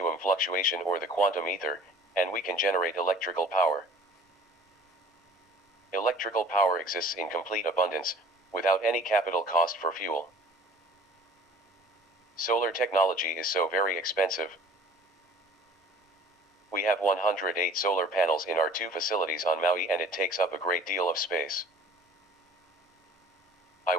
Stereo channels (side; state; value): both; normal; correlation 0.48